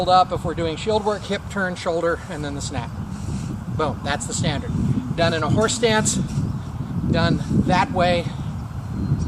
up if we're doing shield work, hip turn, shoulder, and then the snap. Boom, that's the standard. Done in a horse stance, done that way,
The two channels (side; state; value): both; identical; correlation 1.00